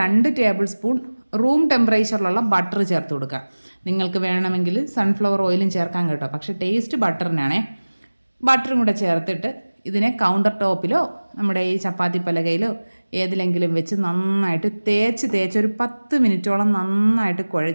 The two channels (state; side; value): inverted; both; correlation -1.00